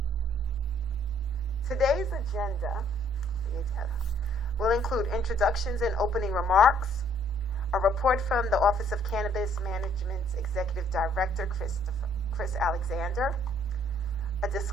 Today's agenda will include introductions and opening remarks, a report from the Office of Cannabis Management's Executive Director, Chris Alexander, a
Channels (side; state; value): both; normal; correlation 0.63